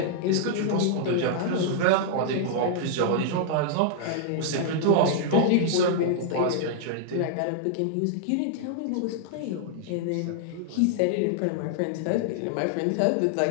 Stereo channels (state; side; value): different; both; correlation -0.01